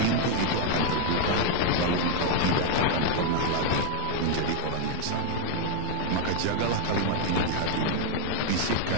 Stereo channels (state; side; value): different; both; correlation 0.01